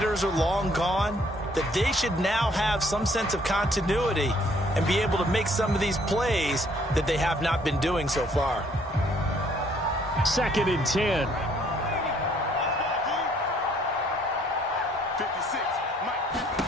are long gone, that they should now have some sense of continuity and be able to make some of these plays that they have not been doing so far. 2nd and 10.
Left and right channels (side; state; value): both; normal; correlation 0.63